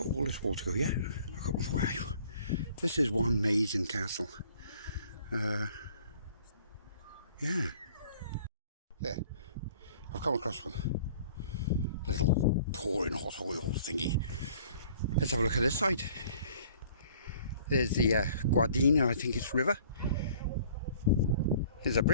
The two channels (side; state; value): both; inverted; correlation -0.53